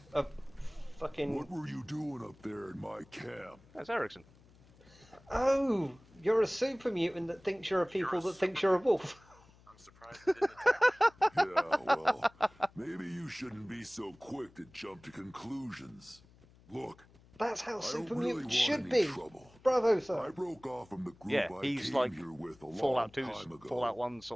a fucking... What were you doing up there in my camp? That's Erickson. Oh, you're a super mutant that thinks you're a people that thinks you're a wolf. I'm surprised it didn't attack. Yeah, well, maybe you shouldn't be so quick to jump to conclusions. Look, That's how I super don't really mutants want should any be. trouble. Bravo, I sir. broke off from the group Yeah, I he's came like here with a long Fallout 2's time ago. Fallout 1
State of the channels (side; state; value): left; noise; hum, 26 dB below the sound